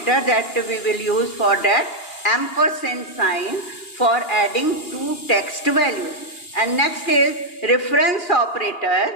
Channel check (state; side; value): late; right; 2.8 ms